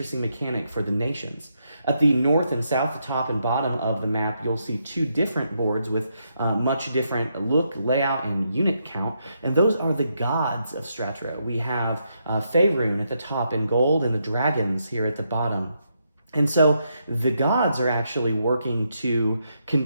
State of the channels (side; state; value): both; inverted; correlation -0.79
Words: mechanic for the nations. At the north and south, the top and bottom of the map, you'll see two different boards with much different look, layout, and unit count, and those are the gods of Statera. We have Faerun at the top in gold and the dragons here at the bottom. And so the gods are actually working to